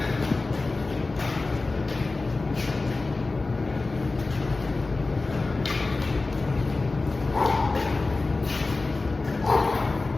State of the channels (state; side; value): quieter; right; 3.5 dB